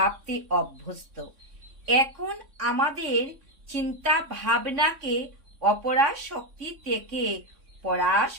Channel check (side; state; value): left; late; 3.6 ms